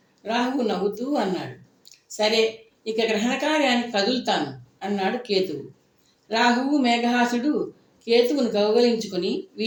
రాహువు నవ్వుతూ అన్నాడు. సరే, ఇక గ్రహణ కార్యానికి కదులుతాను అన్నాడు కేతువు. రాహువు మేఘహాసుడు కేతువును కౌగలించుకుని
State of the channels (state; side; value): identical; both; correlation 1.00